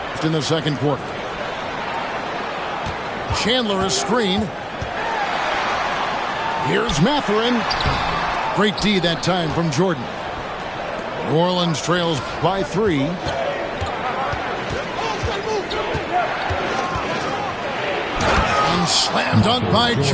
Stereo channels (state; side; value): identical; both; correlation 1.00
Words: in the second quarter. Chandler is screen. Here's Matherin. Great D that time from Jordan. New Orleans trails by 3. And slam dunk by